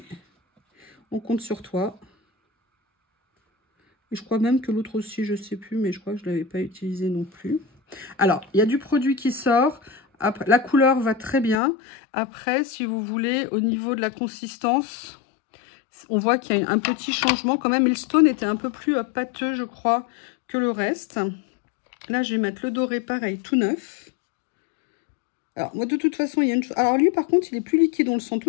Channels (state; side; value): drops out; right; at 11.6 s